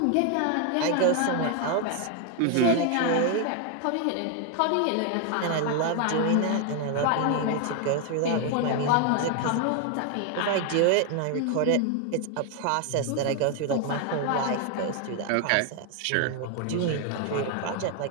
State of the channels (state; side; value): different; both; correlation 0.01